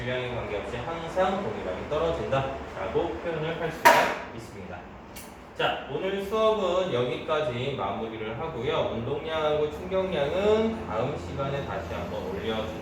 관계없이 항상 동일하게 떨어진다라고 표현을 할 수가 있습니다. 자, 오늘 수업은 여기까지 마무리를 하고요. 운동량하고 충격량은 다음 시간에 다시 한번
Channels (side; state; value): both; identical; correlation 1.00